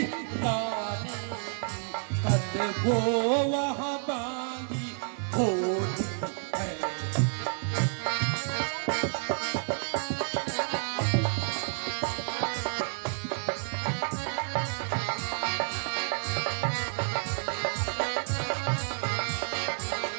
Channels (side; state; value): left; silent; digital silence